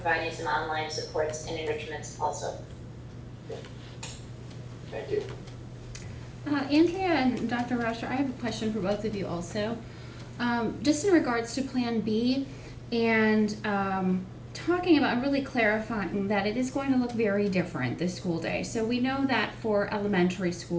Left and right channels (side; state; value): both; identical; correlation 1.00